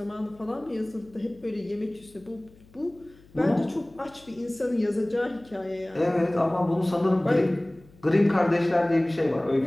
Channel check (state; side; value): noise; left; hum, 26 dB below the sound